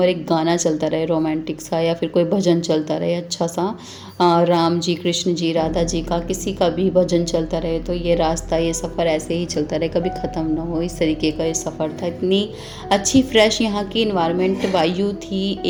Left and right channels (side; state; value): both; identical; correlation 1.00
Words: एक गाना चलता रहे रोमांटिक सा, या फिर कोई भजन चलता रहे अच्छा सा, राम जी, कृष्ण जी, राधा जी का किसी का भी भजन चलता रहे, तो ये रास्ता, ये सफ़र ऐसे ही चलता रहे, कभी ख़त्म ना हो, इस तरीके का ये सफ़र था। इतनी अच्छी फ्रेश यहाँ की इन्वायरमेंट, वायु थी,